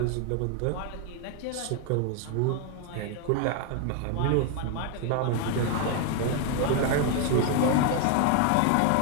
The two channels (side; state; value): both; different; correlation 0.01